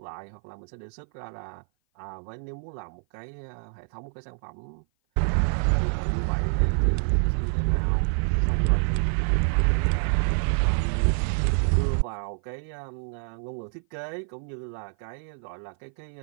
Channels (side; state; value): left; silent; 56 dB below the other